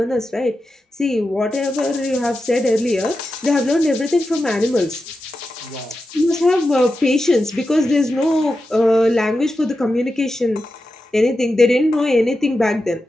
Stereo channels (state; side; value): normal; both; correlation 0.90